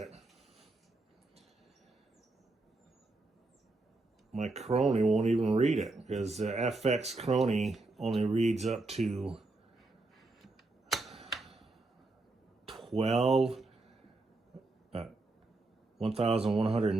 my Crony won't even read it, because the FX Crony only reads up to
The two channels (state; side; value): quieter; left; 3.2 dB